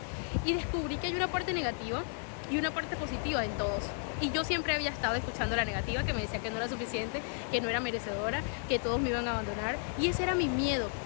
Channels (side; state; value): right; silent; 56 dB below the other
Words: Y descubrí que hay una parte negativa y una parte positiva en todos. Y yo siempre había estado escuchando la negativa, que me decía que no era suficiente, que no era merecedora, que todos me iban a abandonar. Y ese era mi miedo,